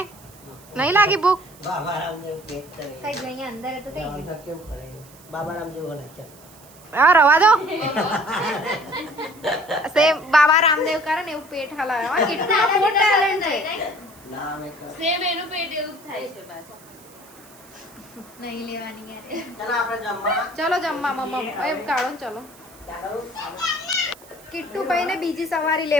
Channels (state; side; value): noise; right; hiss, 23 dB below the sound